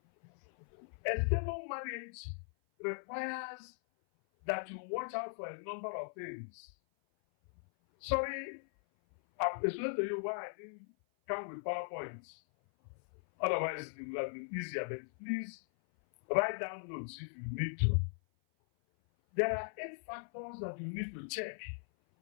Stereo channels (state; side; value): silent; right; 52 dB below the other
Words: A stable marriage requires that you watch out for a number of things. Sorry, I've explained to you why I didn't come with PowerPoints. Otherwise, it would have been easier, but please write down notes if you need to. There are 8 factors that you need to check.